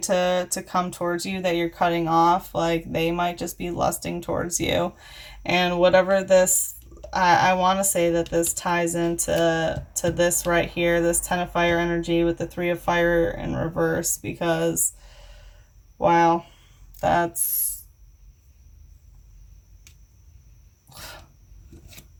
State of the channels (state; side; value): identical; both; correlation 1.00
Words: to come towards you that you're cutting off, like, they might just be lusting towards you. And whatever this, I want to say that this ties into this right here, this 10 of fire energy with the 3 of fire in reverse, because, wow, that's...